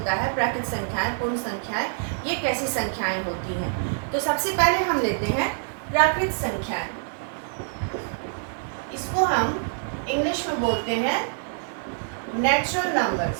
है, प्राकृत संख्याएं, पूर्ण संख्याएं, ये कैसी संख्याएं होती हैं। तो सबसे पहले हम लेते हैं प्राकृत संख्याएं। इसको हम इंग्लिश में बोलते हैं नेचुरल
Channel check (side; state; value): left; silent; 61 dB below the other